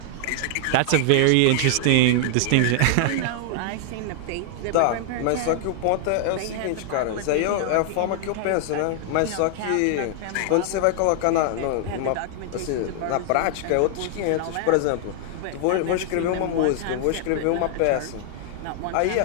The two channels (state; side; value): different; both; correlation 0.00